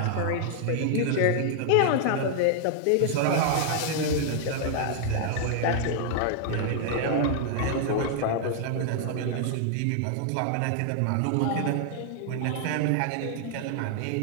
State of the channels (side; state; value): both; different; correlation -0.01